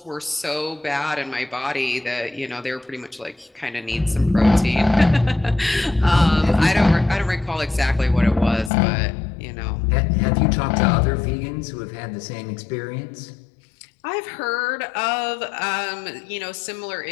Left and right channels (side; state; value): right; drops out; at 8.7 s